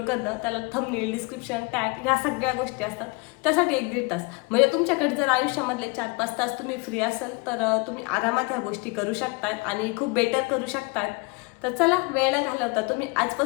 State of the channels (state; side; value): quieter; right; 27.4 dB